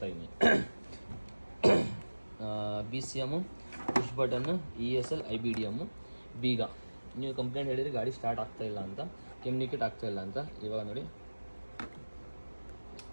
B C M, push button, E S L, I B D M, ಬೀಗ. ನೀವು complaint ಹೇಳಿದರೆ ಗಾಡಿ ಸ್ಟಾರ್ಟ್ ಆಗ್ತಾಯಿಲ್ಲ ಅಂತ, ಕಮ್ಯುನಿಕೇಟ್ ಆಗ್ತಾಯಿಲ್ಲ ಅಂತ. ಇವಾಗ ನೋಡಿ,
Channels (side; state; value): both; inverted; correlation -1.00